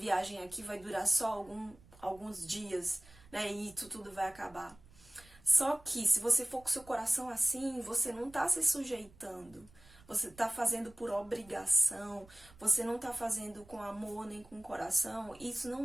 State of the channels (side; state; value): right; noise; rumble, 25 dB below the sound